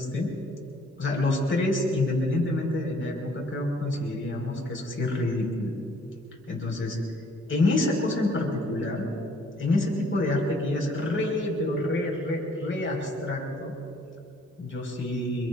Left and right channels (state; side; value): normal; both; correlation 0.61